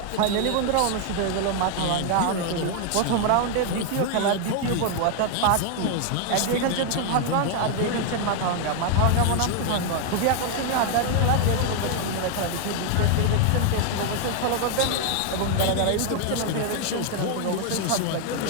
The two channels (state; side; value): different; both; correlation 0.00